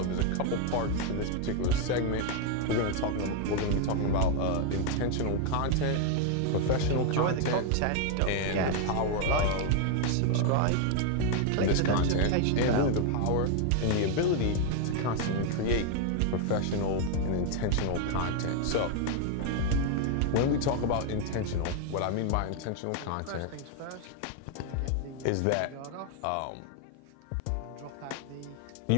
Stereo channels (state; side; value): different; both; correlation 0.00